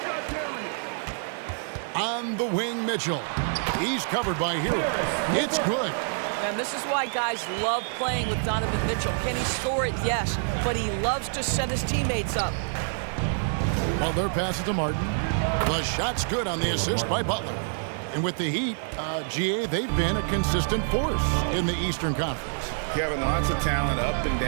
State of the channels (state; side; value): silent; left; digital silence